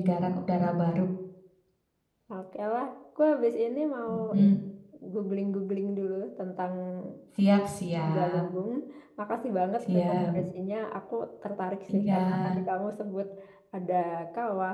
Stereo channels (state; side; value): identical; both; correlation 1.00